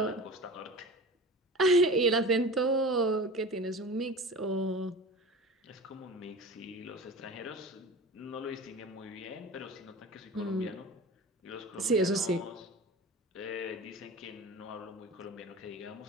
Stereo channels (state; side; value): normal; both; correlation 0.35